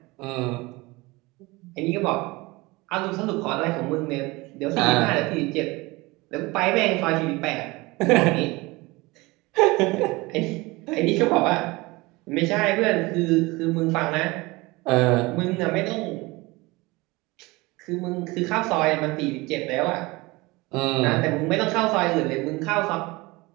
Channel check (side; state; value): left; quieter; 22.8 dB